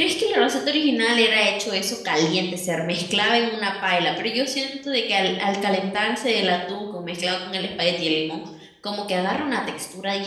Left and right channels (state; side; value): identical; both; correlation 1.00